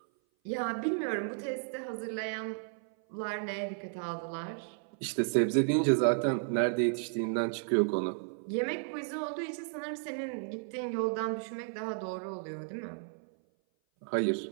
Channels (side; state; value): left; silent; 56 dB below the other